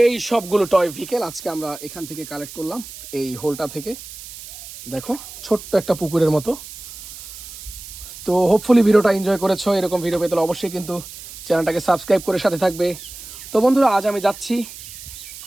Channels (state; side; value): noise; right; hiss, 14 dB below the sound